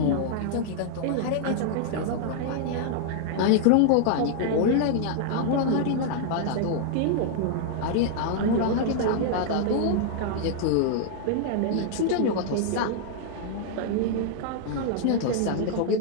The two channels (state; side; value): different; both; correlation 0.00